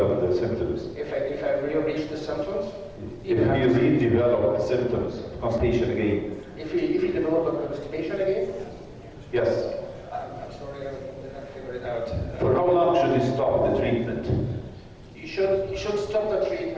the symptoms? If I reach the symptoms? If you redevelop the symptoms of constipation again? If you develop a constipation again? Yes. I'm sorry, I did not figure it out. For how long should you stop the treatment? You should stop the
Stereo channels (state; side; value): identical; both; correlation 1.00